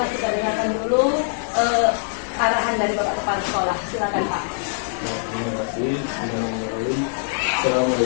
kita dengarkan dulu arahan dari Bapak Kepala Sekolah. Silakan Pak. Terima kasih.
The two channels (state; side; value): silent; right; digital silence